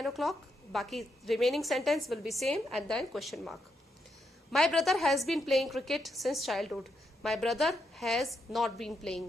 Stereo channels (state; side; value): normal; both; correlation 0.81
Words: o'clock? Baki remaining sentence will be same and then question mark. My brother has been playing cricket since childhood. My brother has not been